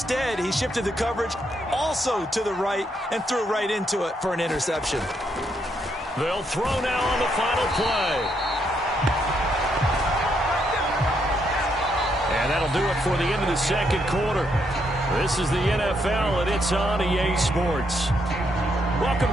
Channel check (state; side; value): normal; both; correlation 0.76